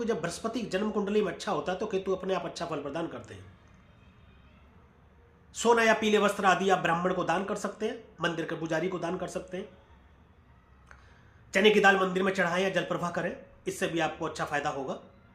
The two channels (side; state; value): both; identical; correlation 1.00